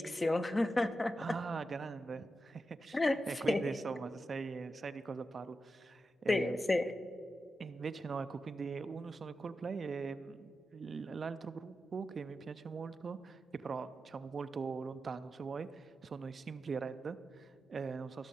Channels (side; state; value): both; normal; correlation 0.90